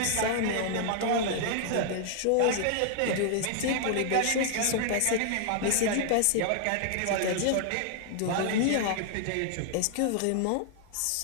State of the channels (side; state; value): both; different; correlation -0.01